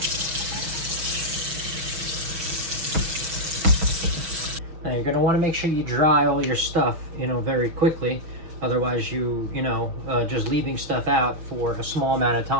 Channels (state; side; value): late; left; 6.2 ms